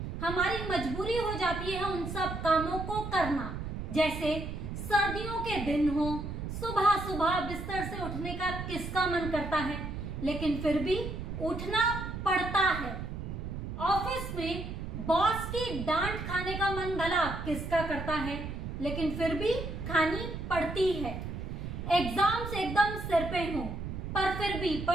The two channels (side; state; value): right; noise; rumble, 6 dB below the sound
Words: हमारी मजबूरी हो जाती है उन सब कामों को करना। जैसे सर्दियों के दिन हो, सुबह सुबह बिस्तर से उठने का किसका मन करता है, लेकिन फिर भी उठना पड़ता है। ऑफिस में बॉस की डांट खाने का मन भला किसका करता है, लेकिन फिर भी खानी पड़ती है। एग्जाम्स एकदम सिर पे हो, पर फिर भी